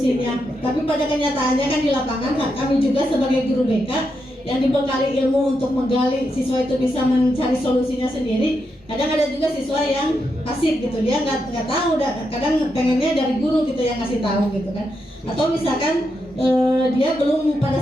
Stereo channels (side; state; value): both; normal; correlation 0.84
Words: Tapi pada kenyataannya kan di lapangan kami juga sebagai guru BK yang dibekali ilmu untuk menggali siswa itu bisa mencari solusinya sendiri. Kadang ada juga siswa yang pasif gitu, dia nggak tahu, kadang pengennya dari guru gitu yang ngasih tahu gitu kan. Atau misalkan dia belum